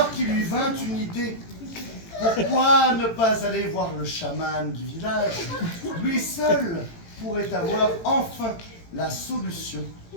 qu'il lui vint une idée. Pourquoi ne pas aller voir le chaman du village? Lui seul pourrait avoir enfin la solution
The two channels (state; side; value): late; right; 18 ms